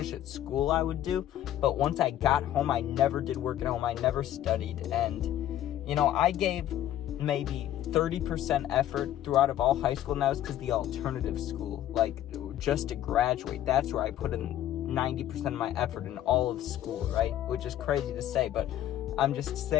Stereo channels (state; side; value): quieter; right; 12.3 dB